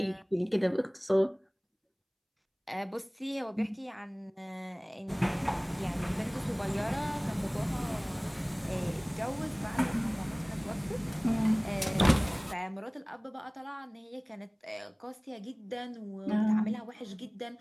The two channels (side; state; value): both; identical; correlation 1.00